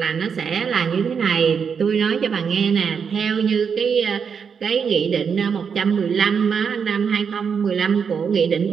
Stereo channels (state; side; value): quieter; left; 6.5 dB